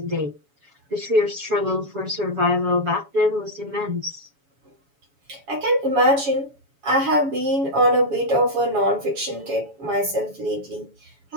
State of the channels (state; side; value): late; left; 7.1 ms